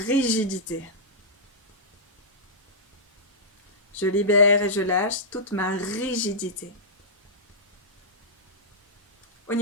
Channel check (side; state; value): both; normal; correlation -0.13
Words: Je libère et je lâche toute ma rigidité. Au